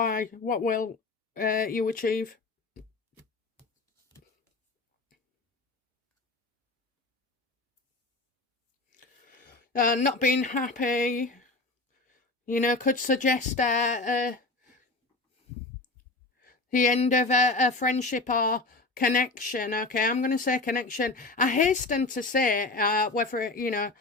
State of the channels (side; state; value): right; quieter; 3.3 dB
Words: What will you achieve? Not being happy, could suggest the end of a friendship or connection. Okay, I'm going to say connection. I hasten to say whether,